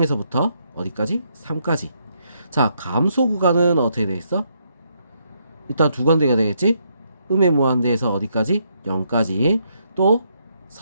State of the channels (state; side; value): inverted; both; correlation -0.75